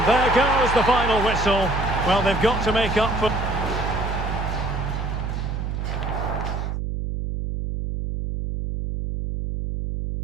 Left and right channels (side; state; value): right; noise; hum, 3 dB below the sound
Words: there goes the final whistle. Well, they've got to make up for...